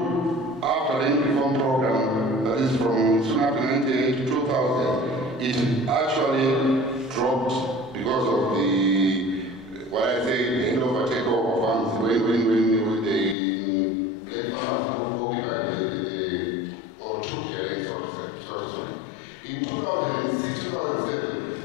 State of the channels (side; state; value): right; drops out; at 13.4 s